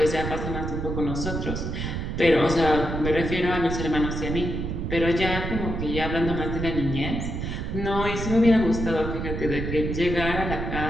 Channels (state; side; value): noise; right; rumble, 4 dB below the sound